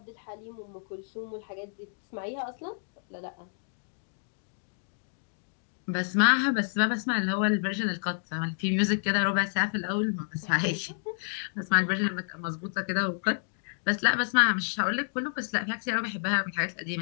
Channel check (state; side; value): silent; right; digital silence